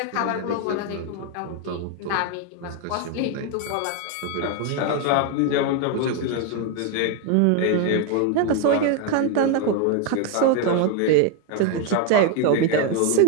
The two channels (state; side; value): different; both; correlation 0.01